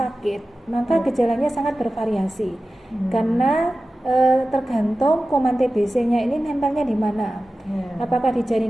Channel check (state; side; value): normal; both; correlation 0.95